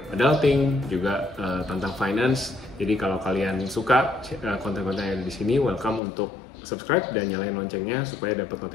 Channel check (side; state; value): right; drops out; at 6.0 s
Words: adulting, juga tentang finance. Jadi kalau kalian suka konten-konten yang ada di sini, welcome untuk subscribe dan nyalain loncengnya supaya dapat